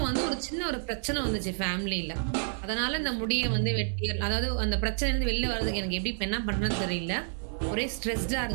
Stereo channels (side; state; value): left; silent; 58 dB below the other